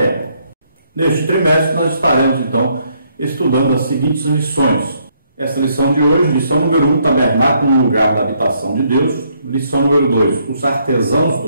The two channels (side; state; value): both; inverted; correlation -0.71